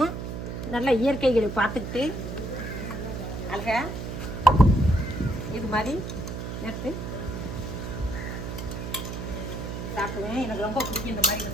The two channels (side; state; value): right; noise; hum, 6 dB below the sound